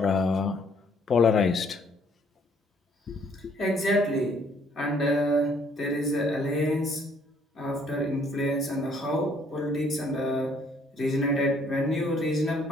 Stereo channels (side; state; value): both; normal; correlation 0.64